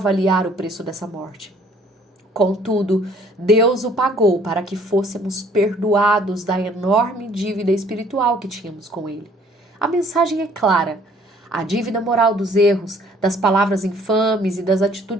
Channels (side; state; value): both; normal; correlation 0.59